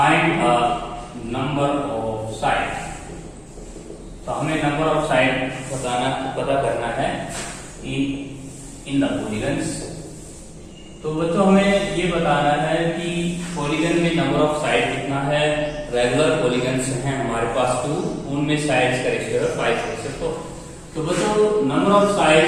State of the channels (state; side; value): identical; both; correlation 1.00